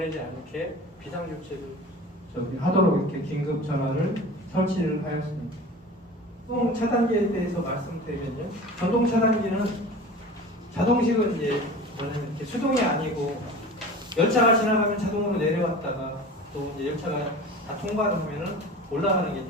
않게 비상조치를 저기 하도록 이렇게 긴급 전화를 설치를 하였습니다. 전동 차단기에 대해서 말씀드리면요. 전동 차단기는 자동식은 이제 뭐냐면 이렇게 수동이 아니고 열차가 지나가면 자동으로 내려왔다가 또 이제 열차가 다 통과를 하면은 올라가는 게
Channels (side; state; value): both; normal; correlation 0.37